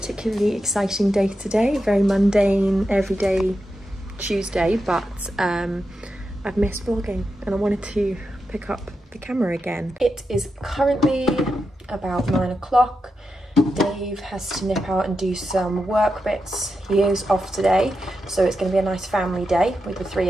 exciting day today, very mundane, everyday Tuesday, but I've missed vlogging and I wanted to pick up the camera again. It is currently about 9 o'clock. Dave has to nip out and do some work bits. He is off today, so it's going to be a nice family day with the three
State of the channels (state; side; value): normal; both; correlation 0.88